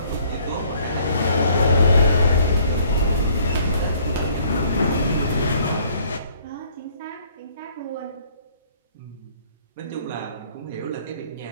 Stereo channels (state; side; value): inverted; both; correlation -0.61